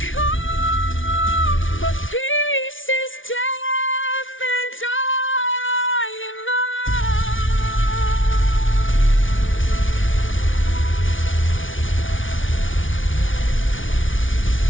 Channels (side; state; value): right; late; 0.57 ms